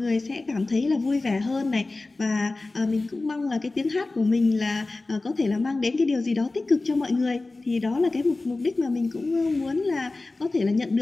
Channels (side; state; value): right; quieter; 3.3 dB